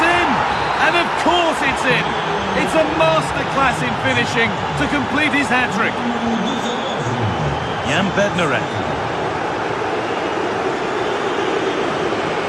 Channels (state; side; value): identical; both; correlation 1.00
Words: in! And of course it's in! It's a masterclass in finishing to complete his hat-trick. Jan Bednarek.